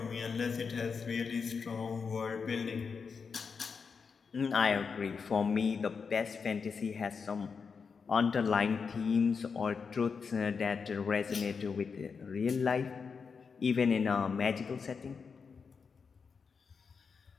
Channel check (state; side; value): quieter; right; 5.6 dB